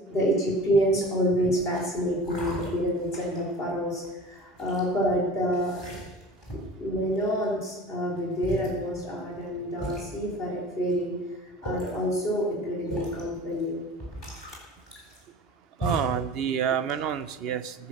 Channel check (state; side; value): normal; both; correlation 0.40